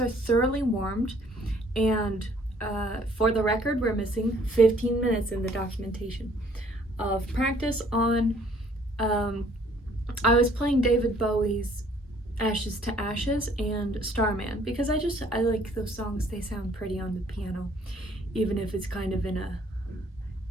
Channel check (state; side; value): normal; both; correlation 0.60